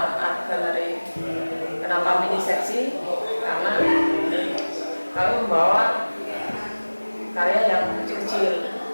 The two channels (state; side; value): inverted; both; correlation -1.00